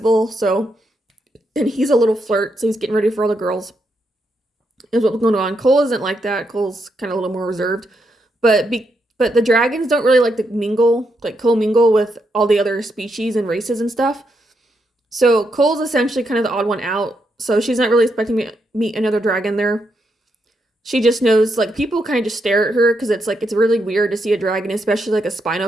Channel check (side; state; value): both; normal; correlation 0.80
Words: So, and he's a little flirt, so he's getting ready for all the girls is what's going on. Cole isn't like that. Cole's kind of a little more reserved, but the dragons don't really like to mingle, like co-mingle with all the other species and races and stuff. So Cole's essentially kind of the odd one out. So she's not really expecting me to meet another dragon there. She just knows, like, people kind of just stare at her because it's like it's really weird to see a dragon, especially like a